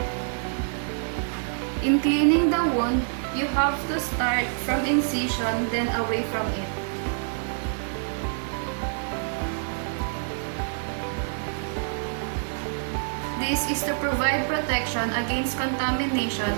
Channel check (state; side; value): silent; left; 61 dB below the other